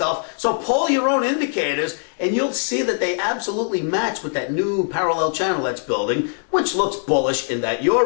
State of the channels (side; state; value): right; silent; digital silence